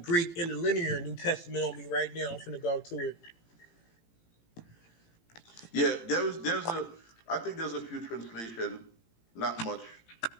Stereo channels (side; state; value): right; late; 18 ms